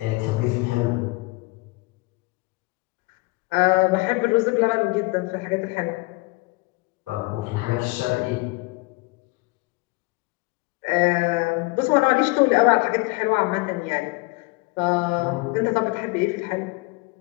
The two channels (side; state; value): right; quieter; 24.8 dB